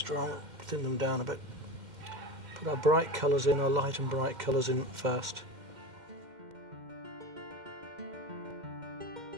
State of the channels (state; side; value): late; left; 2.1 ms